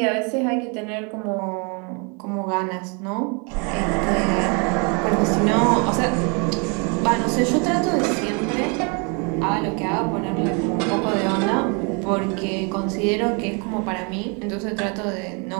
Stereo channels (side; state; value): left; quieter; 33.9 dB